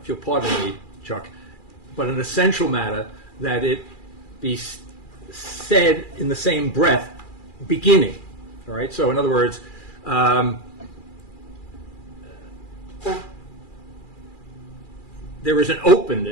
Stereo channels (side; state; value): right; late; 2.4 ms